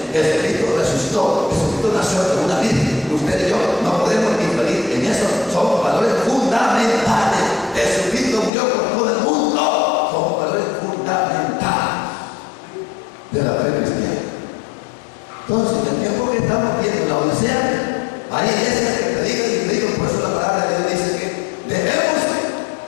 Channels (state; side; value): drops out; right; at 8.5 s